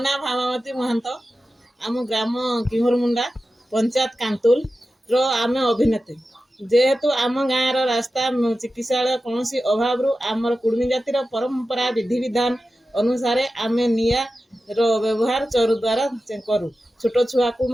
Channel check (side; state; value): both; normal; correlation 0.93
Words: ନାଁ ଭାମାବତୀ ମହାନ୍ତ। ଆମ ଗ୍ରାମ କିହରମୁଣ୍ଡା, ପଞ୍ଚାୟତ କାନ୍ତୁଲର ଆମେ ଅଭିନେତ୍ରୀ। ଯେହେତୁ ଆମ ଗାଁର ରାସ୍ତା, ଚିକିତ୍ସାଳୟ କୌଣସି ଅଭାବରୁ ଆମର କୁଡ଼ୁମି ଜାତିର ପରମ୍ପରା ବିଧିବିଧାନ ଅନୁସାରେ ଆମେ ନିଆଁର ବ୍ୟବହାର ଚରୁ ଦ୍ୱାରା କରୁ। ଛୋଟ ଛୁଆକୁ